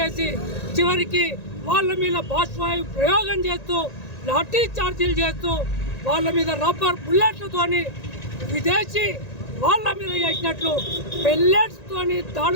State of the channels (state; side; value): late; right; 1.9 ms